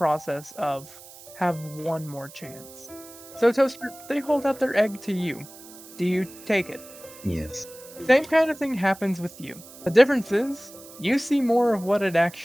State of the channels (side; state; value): right; noise; hiss, 19 dB below the sound